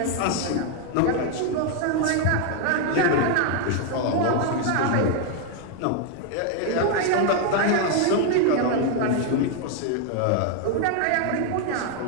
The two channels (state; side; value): different; both; correlation 0.00